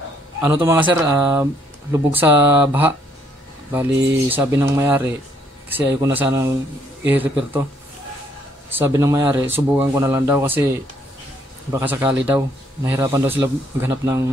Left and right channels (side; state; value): both; normal; correlation 0.68